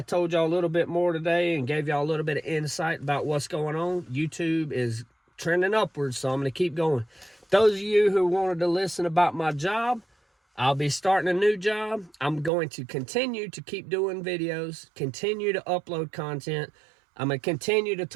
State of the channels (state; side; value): drops out; left; at 12.5 s